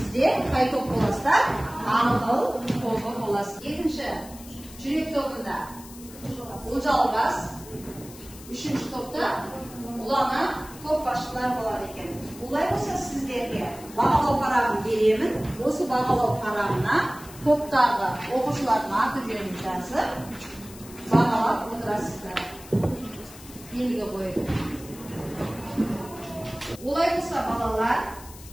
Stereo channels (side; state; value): left; noise; hiss, 18 dB below the sound